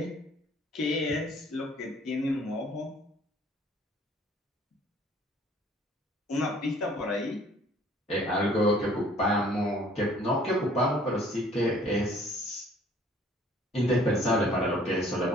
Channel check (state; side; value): normal; both; correlation 0.56